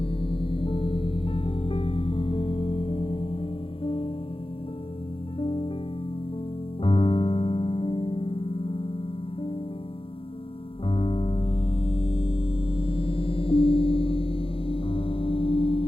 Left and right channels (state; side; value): late; right; 0.26 ms